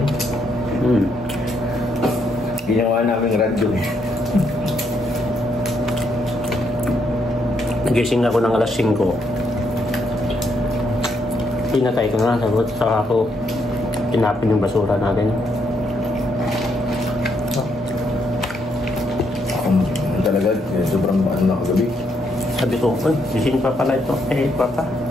Ginawa namin radyo eh. Nagising ako ng alas 5. Pinatay ko na, sagot saka ako tinapin yung basura natin. Ako talaga, sobrang ano na kagabi. Sabi ko, gising pa pala ito. Eh, papa.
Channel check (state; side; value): normal; both; correlation 0.75